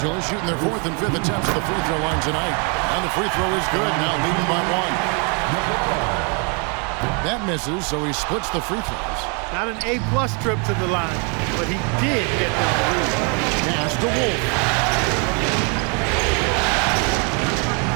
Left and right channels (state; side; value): quieter; left; 35.3 dB